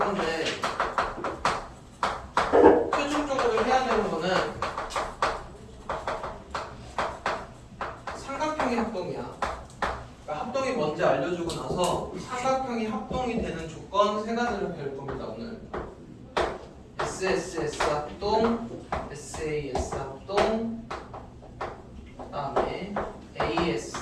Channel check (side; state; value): both; identical; correlation 1.00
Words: 최종적으로 해야 되는 거는 삼각형의 합동이야. 그러니까 합동이 뭔지 알려주고 나서 삼각형이 합동이 되는 조건 3가지를 배울 겁니다. 오늘 SSS 합동, SAS 합동, 그 다음에